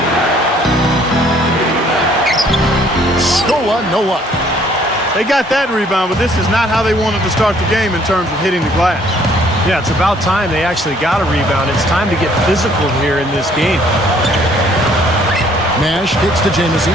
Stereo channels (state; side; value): normal; both; correlation 0.61